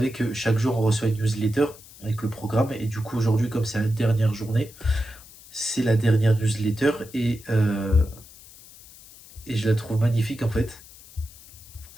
que chaque jour, on reçoit une newsletter avec le programme. Et du coup, aujourd'hui, comme c'est la dernière journée, c'est la dernière newsletter. Et je la trouve magnifique, en fait.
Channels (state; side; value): noise; left; hiss, 21 dB below the sound